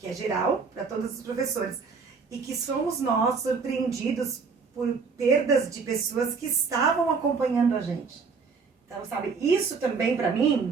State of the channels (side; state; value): left; quieter; 5.1 dB